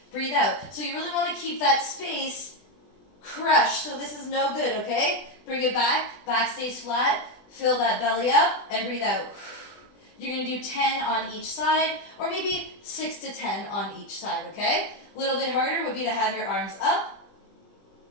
breathe out. So you really wanna keep that space crushed, so this is no good, okay? Bring it back stays flat, fill that belly up, and breathe out. You're gonna do 10 on each side, or maybe 6 to 10 on each side, okay? A little bit harder would be to have your arms up.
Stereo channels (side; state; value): right; late; 20 ms